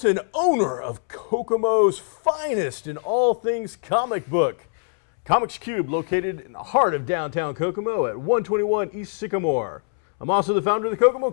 owner of Kokomo's finest in all things comic book. Comics Cube, located in the heart of downtown Kokomo at 121 East Sycamore. I'm also the founder of the Kokomo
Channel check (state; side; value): silent; right; 63 dB below the other